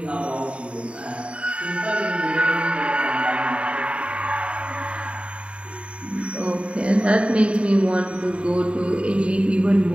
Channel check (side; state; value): left; late; 0.060 ms